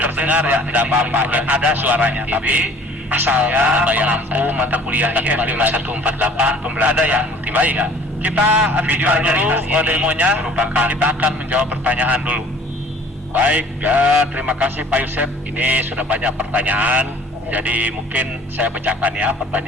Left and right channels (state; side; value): normal; both; correlation 0.51